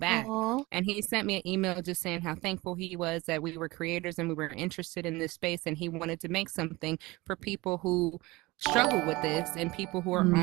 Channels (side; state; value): left; quieter; 21.7 dB